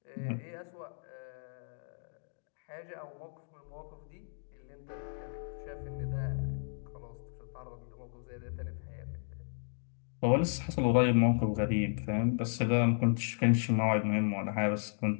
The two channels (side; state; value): right; silent; digital silence